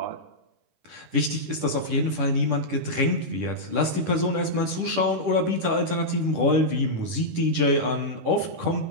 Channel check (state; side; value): late; left; 10 ms